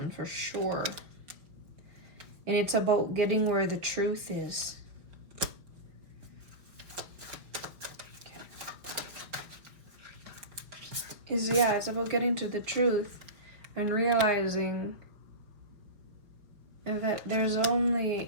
for sure. And it's about getting where the truth is. It's about getting to the truth and realizing that there's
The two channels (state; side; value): late; left; 4.7 ms